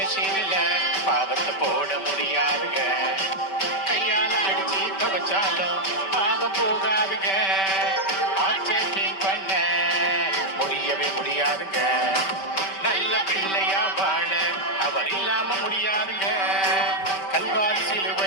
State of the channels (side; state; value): right; late; 5.2 ms